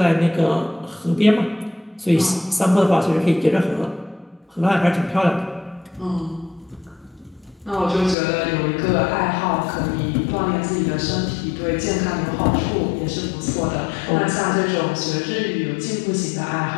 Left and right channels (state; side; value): drops out; right; at 8.2 s